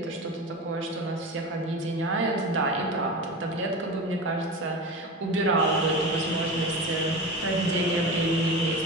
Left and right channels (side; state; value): both; normal; correlation 0.28